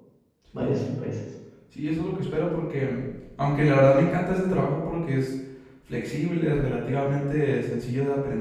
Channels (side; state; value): both; identical; correlation 1.00